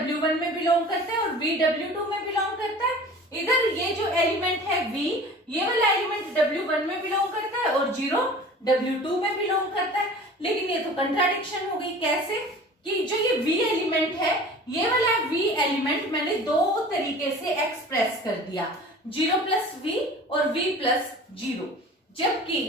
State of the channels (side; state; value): both; normal; correlation 0.42